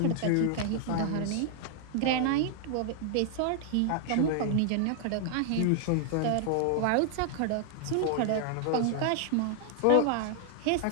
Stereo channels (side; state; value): both; different; correlation -0.01